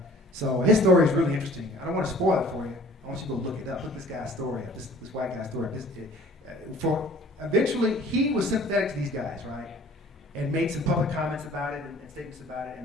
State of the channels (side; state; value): both; normal; correlation 0.51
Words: So his story is really interesting. I don't want to spoil it for you. I want you to go look it up. Look this guy's story up. This white guy's story. Eventually, he was sympathetic to these guys, right? And made some public comments about it and statements about it.